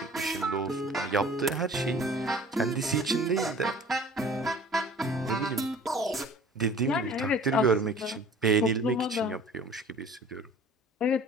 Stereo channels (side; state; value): both; normal; correlation 0.46